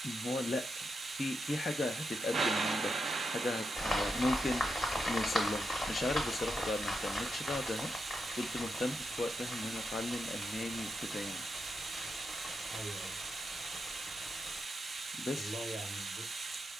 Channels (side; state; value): both; normal; correlation 0.85